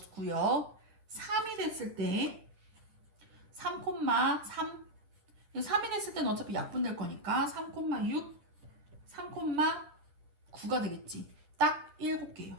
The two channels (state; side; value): late; left; 10 ms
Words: 3이 됐을 때 3,3, 3이 됐을 때는 어차피 약분될 거니까 3,6, 3,9가 되겠지. 딱 7개요.